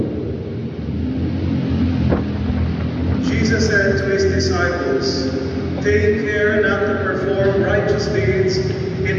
Jesus said to his disciples, "Take care not to perform righteous deeds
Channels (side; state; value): both; identical; correlation 1.00